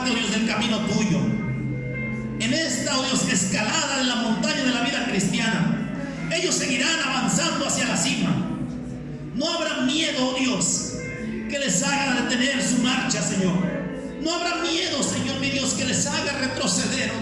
oh Dios, del camino tuyo. En esta, oh Dios, escalada de la montaña de la vida cristiana, ellos seguirán avanzando hacia la cima. No habrá miedo, oh Dios, que les haga detener su marcha, Señor. No habrá miedo, Señor mi Dios, que les haga retroceder,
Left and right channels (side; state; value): both; identical; correlation 1.00